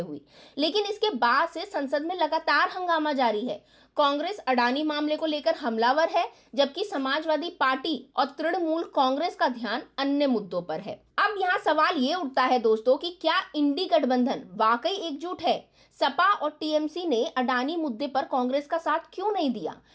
लेकिन इसके बाद से संसद में लगातार हंगामा जारी है। कांग्रेस अडानी मामले को लेकर हमलावर है, जबकि समाजवादी पार्टी और तृणमूल कांग्रेस का ध्यान अन्य मुद्दों पर है। अब यहाँ सवाल ये उठता है दोस्तों कि क्या इंडी गठबंधन वाकई एकजुट है? सपा और टीएमसी ने अडानी मुद्दे पर कांग्रेस का साथ क्यों नहीं दिया?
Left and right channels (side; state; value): both; identical; correlation 1.00